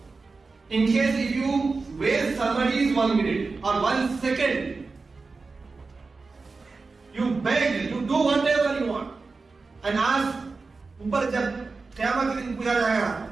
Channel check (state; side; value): quieter; left; 4.1 dB